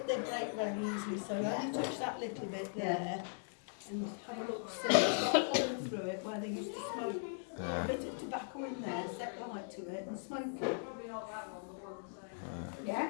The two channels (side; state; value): right; silent; digital silence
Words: their brake very easily, so I touch that little bit there and have a look, see, it's got a hole through it where they used to smoke. A bit of tobacco in there, set light to it and smoke it.